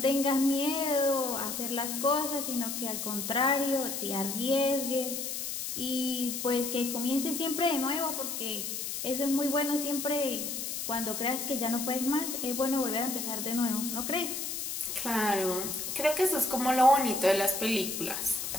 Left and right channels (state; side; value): noise; left; hiss, 4 dB below the sound